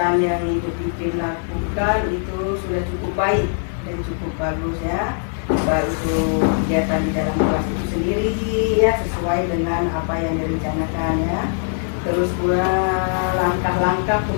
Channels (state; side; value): silent; right; digital silence